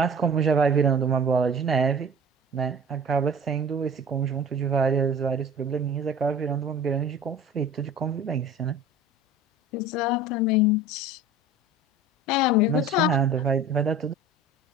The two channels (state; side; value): normal; both; correlation 0.41